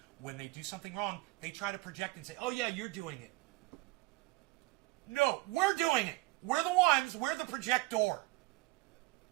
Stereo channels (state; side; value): quieter; left; 21.6 dB